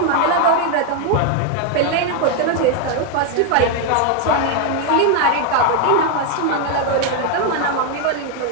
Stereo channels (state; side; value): different; both; correlation 0.01